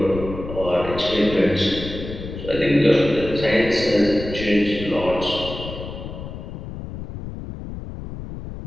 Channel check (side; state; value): left; noise; rumble, 10 dB below the sound